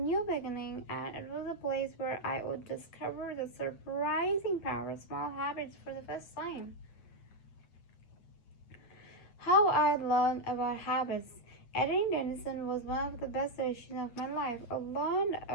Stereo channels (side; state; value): right; late; 8.7 ms